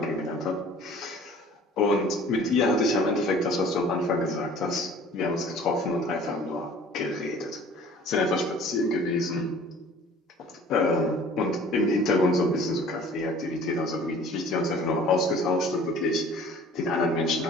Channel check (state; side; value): normal; both; correlation 0.49